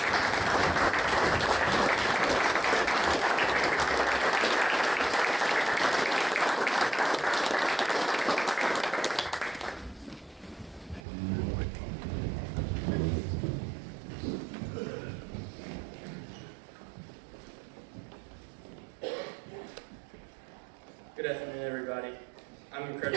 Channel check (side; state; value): left; drops out; at 11.0 s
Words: Good afternoon, everybody. I'm